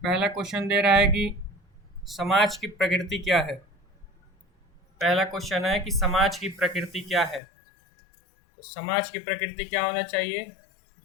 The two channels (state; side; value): drops out; right; at 7.4 s